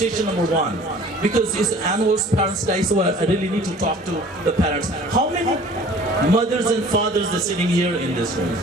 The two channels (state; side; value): normal; both; correlation 0.49